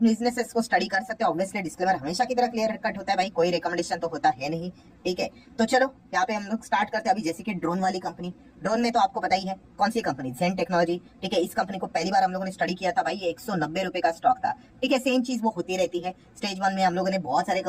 को स्टडी कर सकते हो। ऑब्वियसली डिस्क्लेमर हमेशा की तरह क्लियर कट होता है भाई, कोई रिकमेंडेशन तो होता है नहीं। ठीक है, तो चलो यहाँ पे हम लोग स्टार्ट करते हैं। अभी जैसे कि ड्रोन वाली कंपनी, ड्रोन में तो आपको पता ही है कौन सी कंपनी, जेन टेक्नोलॉजी। ठीक है, इस कंपनी को पहली बार हम लोगों ने स्टडी किया था भाई, ये 190 रुपए का स्टॉक था। ठीक है, सेम चीज वो होती रहती है। स्टेज 1 में हम लोगों ने बहुत सारे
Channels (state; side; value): identical; both; correlation 1.00